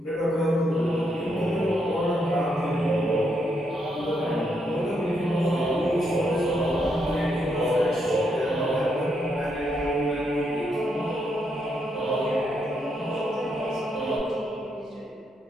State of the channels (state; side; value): normal; both; correlation 0.78